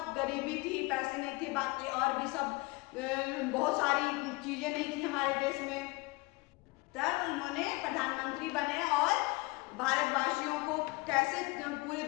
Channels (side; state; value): right; quieter; 24.3 dB